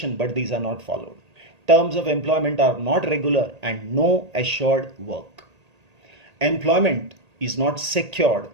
but these are not followed. Terms of employment are not regular and no assured work. Employment is not secured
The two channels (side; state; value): left; late; 1.8 ms